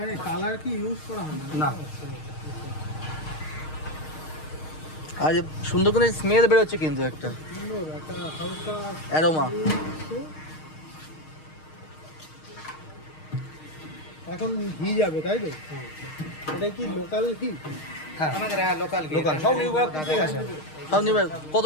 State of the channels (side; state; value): right; late; 6.5 ms